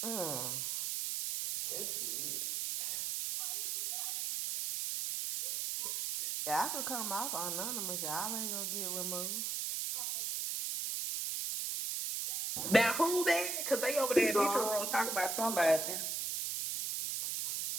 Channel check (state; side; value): noise; right; hiss, 1 dB below the sound